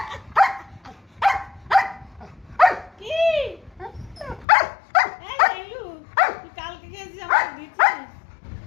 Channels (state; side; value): drops out; right; at 4.5 s